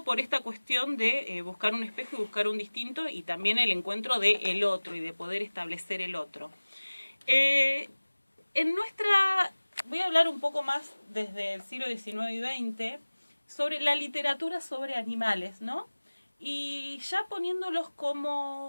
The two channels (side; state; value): both; inverted; correlation -1.00